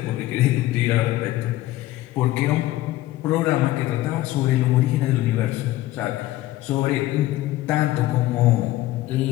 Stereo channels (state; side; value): quieter; right; 16.1 dB